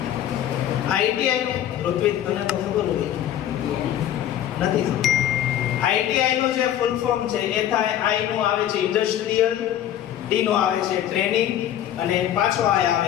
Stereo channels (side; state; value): right; quieter; 11.3 dB